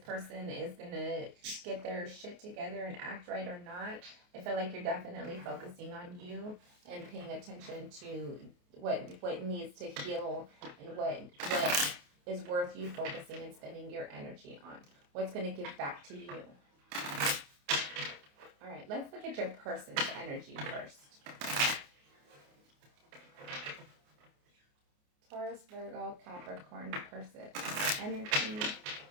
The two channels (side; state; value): left; late; 28 ms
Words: is going to get their shit together and act right or not, I feel like you're definitely focusing on you and paying attention to what needs to heal and what is worth you focusing and spending your energy on. What's going to give back to you. All right, let's look at your person's energy first. Taurus, Virgo, Capricorn person energy